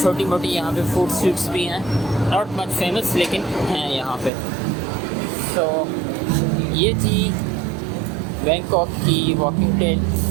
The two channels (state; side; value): drops out; left; at 4.3 s